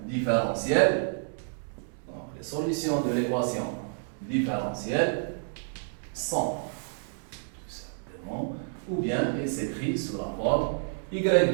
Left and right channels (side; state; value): left; silent; digital silence